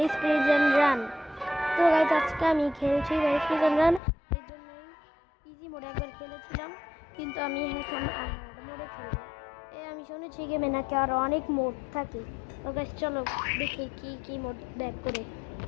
প্রিজন রান। তো গাইস আজকে আমি খেলছি ব্যারিস প্রিজন রান। এর জন্যই ইজি মোডে একবার খেলেছিলাম, কিন্তু আমি এখন হার্ড মোডে খেলবো। আমি শুনেছি গেমে নাকি আরও অনেক মোড থাকে। তো গাইস চলো দেখি কি মোড ব্যাক করে।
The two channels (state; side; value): drops out; right; at 4.0 s